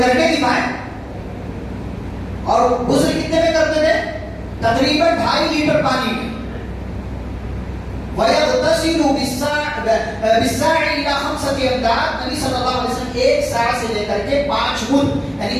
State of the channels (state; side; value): identical; both; correlation 1.00